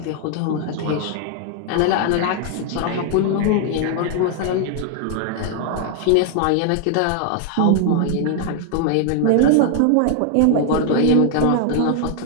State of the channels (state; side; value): different; both; correlation 0.00